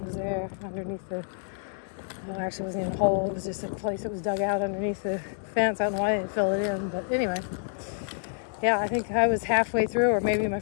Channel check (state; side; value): silent; right; digital silence